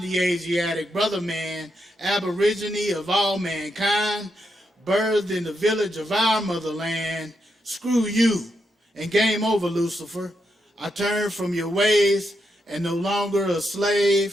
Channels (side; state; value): both; normal; correlation 0.82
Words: Asiatic brother man, aborigine of all mankind, birthed in the village of our motherland. Screw you, and game over, Lucifer. I turn from your ways and no longer a